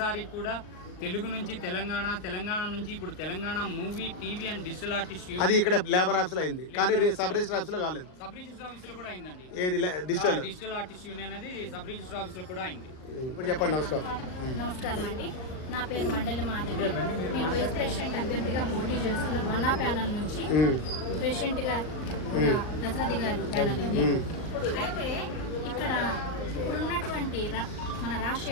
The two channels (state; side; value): late; right; 39 ms